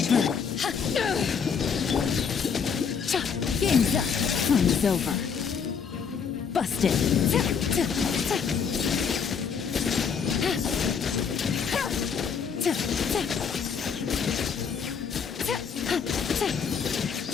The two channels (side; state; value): right; quieter; 6.5 dB